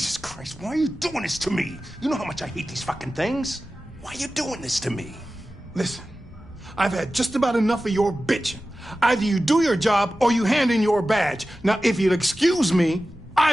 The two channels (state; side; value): normal; both; correlation 0.95